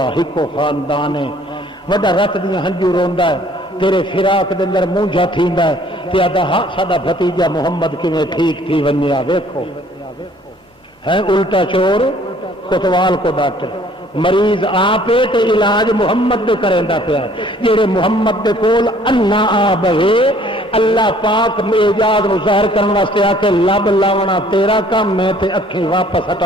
ہکو خاندان ہے وڈا رت دیا ہنجو روندا ہے تیرے فراق دے اندر مونجھا تھیندا ہے تے آدا ہاں ساڈا بھتیجا محمد کیویں ٹھیک تھی ونیا ویکھو ہے الٹا چور کوتوال کو ڈاکٹر مریض آپ تے علاج محمد دے کریندا پیا جڑے محمد دے کول انا آ بہے اللہ پاک اعجاز نو ظاہر کرنے واسطے آ کے لب لاونا تیرا کام ہے تے اکھیں واپس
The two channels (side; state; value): both; normal; correlation 0.58